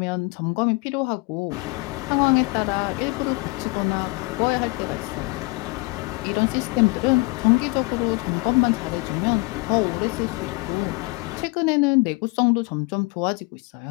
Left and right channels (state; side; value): quieter; right; 26.3 dB